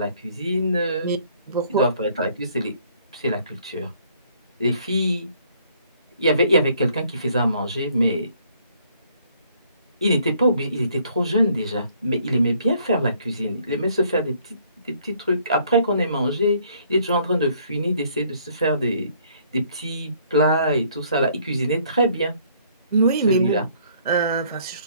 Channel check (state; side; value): inverted; both; correlation -0.63